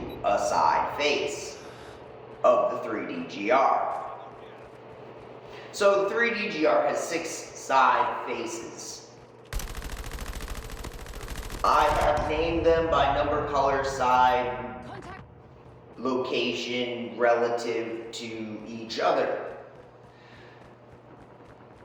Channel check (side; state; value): both; identical; correlation 1.00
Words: a side face of the 3DGR. So the 3DGR has 6 side faces. I have named them by number, color, side, location relative to each other.